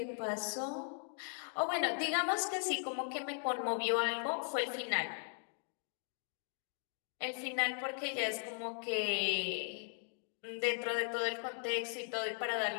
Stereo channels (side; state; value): right; silent; 52 dB below the other